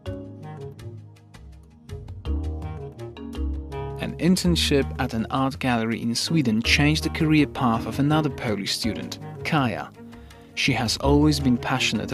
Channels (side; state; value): both; identical; correlation 1.00